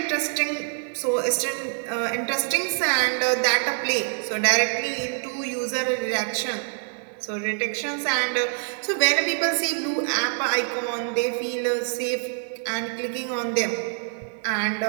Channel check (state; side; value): silent; left; 60 dB below the other